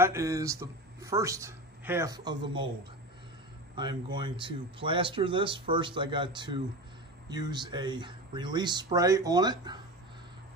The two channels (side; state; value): both; normal; correlation 0.27